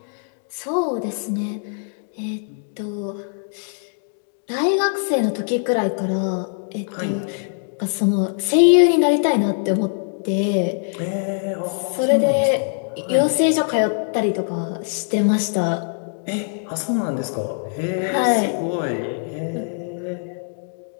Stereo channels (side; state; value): right; silent; digital silence